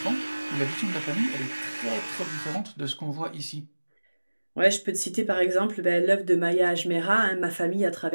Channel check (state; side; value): inverted; both; correlation -1.00